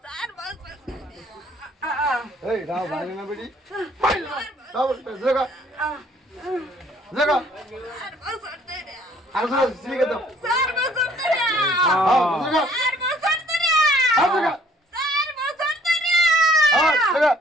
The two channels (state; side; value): normal; both; correlation 0.60